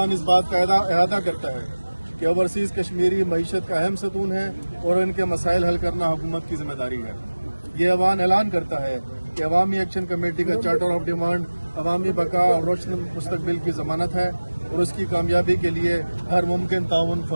इस बात का अहाता करता है कि ओवरसीज़ कश्मीरी मईशत का अहम सतून है और इनके मसाइल हल करना हुकूमत की जिम्मेदारी है। ये अवान ऐलान करता है कि अवामी एक्शन कमेटी का चार्टर ऑफ डिमांड अवामी बका और रोशन मुस्तकबिल की जमानत है और उसकी कामयाबी के लिए हर मुमकिन ताउन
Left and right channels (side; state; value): both; inverted; correlation -1.00